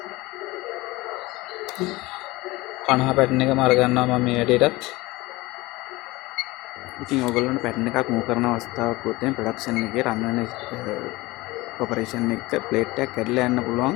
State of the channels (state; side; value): quieter; right; 20.9 dB